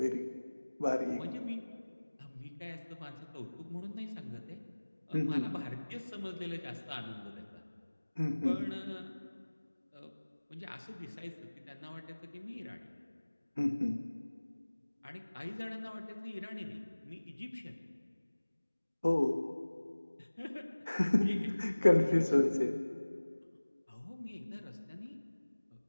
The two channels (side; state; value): both; inverted; correlation -1.00